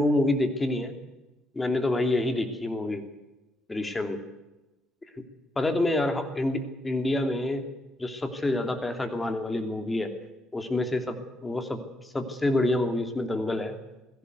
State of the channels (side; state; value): both; normal; correlation 0.79